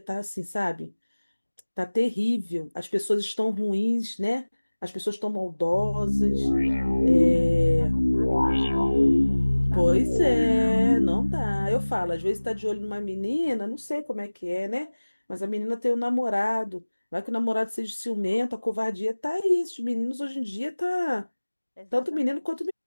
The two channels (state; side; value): inverted; both; correlation -1.00